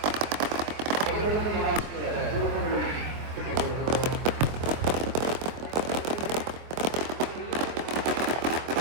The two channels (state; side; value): late; left; 24 ms